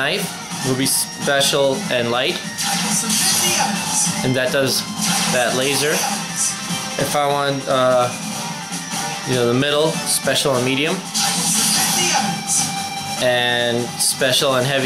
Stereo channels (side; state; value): both; identical; correlation 1.00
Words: it will be special and light, and that does that laser. If I want, the middle, special and medium, and special and